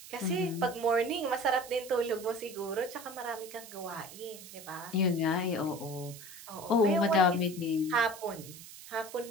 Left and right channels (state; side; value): noise; right; hiss, 15 dB below the sound